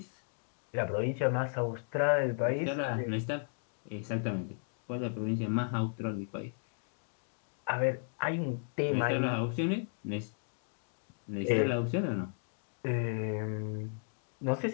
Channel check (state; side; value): silent; right; digital silence